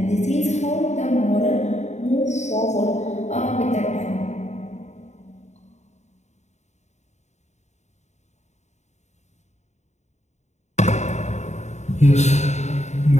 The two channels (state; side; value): late; right; 0.33 ms